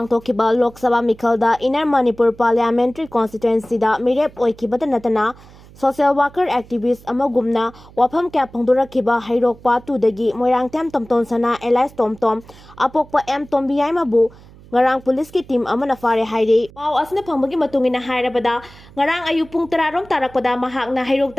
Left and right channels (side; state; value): right; noise; hum, 22 dB below the sound